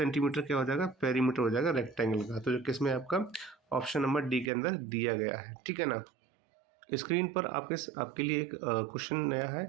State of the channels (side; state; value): left; drops out; at 4.5 s